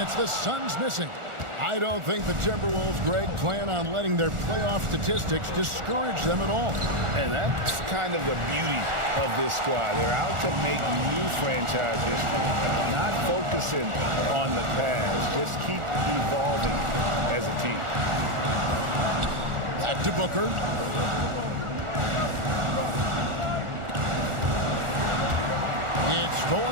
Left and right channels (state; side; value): late; left; 1.4 ms